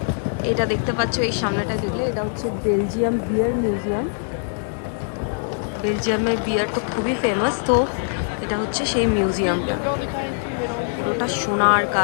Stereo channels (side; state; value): right; silent; digital silence